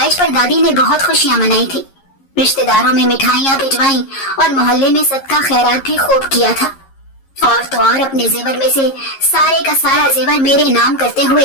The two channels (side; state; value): right; late; 11 ms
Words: पर दादी ने बहुत खुशियां मनाई थी। रिश्तेदारों में मिठाइयां भिजवाई और मोहल्ले में सदका खैरात भी खूब किया था। और तो और अपने जेवर में से सारे का सारा जेवर मेरे नाम करते